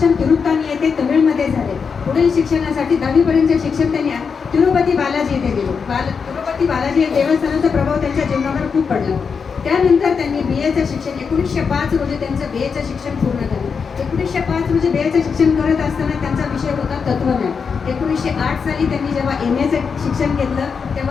तिरुत्तानी येथे तमिळमध्ये झाले. पुढील शिक्षणासाठी 10वी पर्यंतचे शिक्षण त्यांनी तिरुपती बालाजी येथे दिले. तिरुपती बालाजी या देवस्थानाचा प्रभाव त्यांच्या जीवनावर खूप पडला. त्यानंतर त्यांनी BAचं शिक्षण 1905 रोजी त्यांचं BAचं शिक्षण पूर्ण झालं. 1905 रोजी BAचं शिक्षण करत असताना त्यांचा विषय होता तत्वज्ञान. 1908 साली त्यांनी जेव्हा MAचं शिक्षण घेतलं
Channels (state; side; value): quieter; right; 5.8 dB